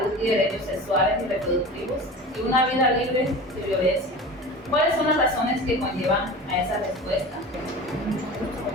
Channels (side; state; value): both; normal; correlation 0.34